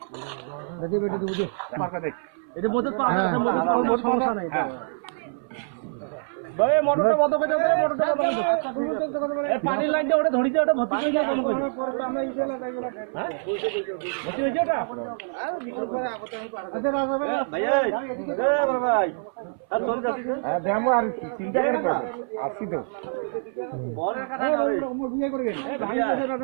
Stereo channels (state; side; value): silent; left; 59 dB below the other